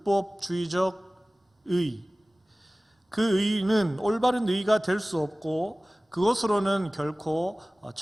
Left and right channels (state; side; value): normal; both; correlation 0.98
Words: 의, 그 의는 올바른 의가 될 수 없고 그것으로는 결코